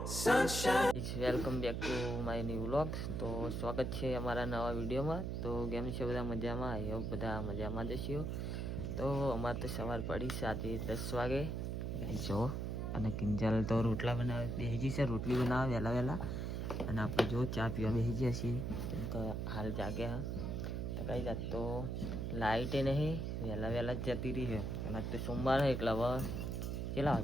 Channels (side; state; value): right; noise; hum, 2 dB below the sound